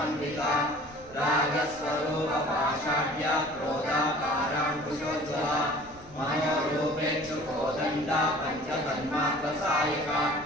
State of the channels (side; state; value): left; noise; rumble, 23 dB below the sound